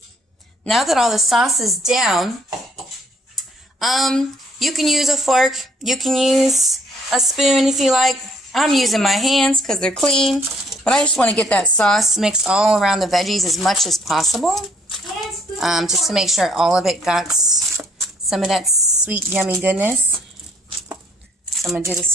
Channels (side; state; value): both; normal; correlation 0.64